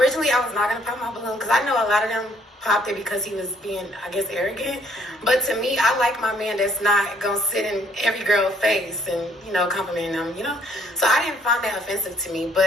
I was not going to pop my balloon because I know a lot of them popped it because he was being, I guess, arrogant. But to me, I like my man that's not going to sit in every girl's face and, you know, complimenting them, you know. So I didn't find that offensive to me.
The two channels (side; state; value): both; normal; correlation 0.64